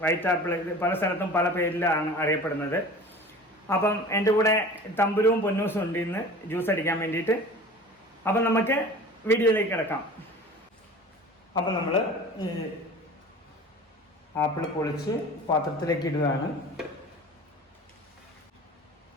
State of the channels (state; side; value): normal; both; correlation 0.40